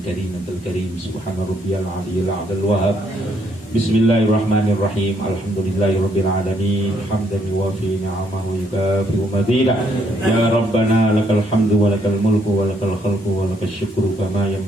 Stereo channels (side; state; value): both; normal; correlation 0.71